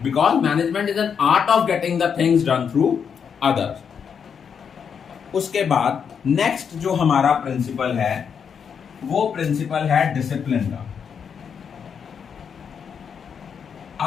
because management is an art of getting the things done through others. उसके बाद नेक्स्ट जो हमारा प्रिंसिपल है वो प्रिंसिपल है डिसिप्लिन का।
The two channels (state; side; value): quieter; right; 7.0 dB